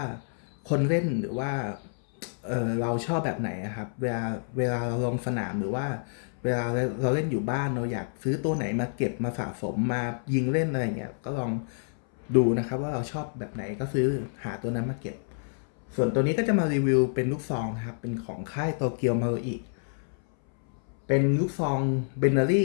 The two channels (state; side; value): silent; right; 59 dB below the other